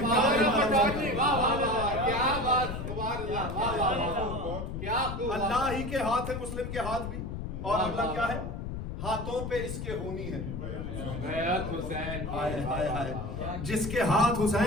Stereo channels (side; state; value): left; noise; rumble, 6 dB below the sound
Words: کیا اللہ ہی کے ہاتھ ہے، مسلم کے ہاتھ بھی، اور اللہ کیا ہے؟ ہاتھوں پہ اس کے ہونی ہے بیعت حسین. ہائے ہائے ہائے جس کے ہاتھ